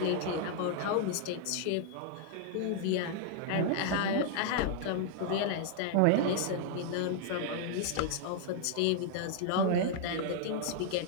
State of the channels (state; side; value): different; both; correlation -0.01